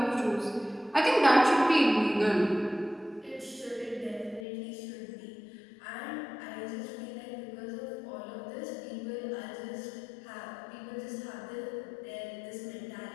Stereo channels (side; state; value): right; drops out; at 4.5 s